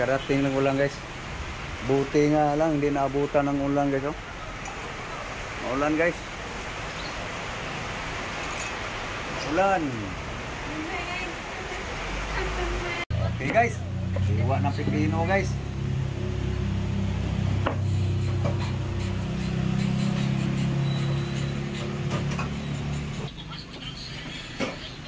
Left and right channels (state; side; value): identical; both; correlation 1.00